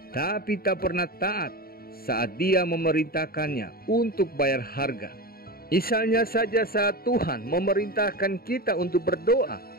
tapi tak pernah taat saat Dia memerintahkannya untuk bayar harga. Misalnya saja saat Tuhan memerintahkan kita untuk berdoa,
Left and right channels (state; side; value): late; right; 0.44 ms